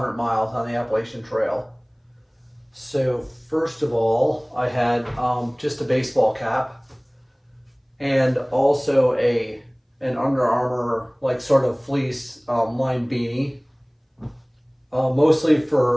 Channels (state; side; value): identical; both; correlation 1.00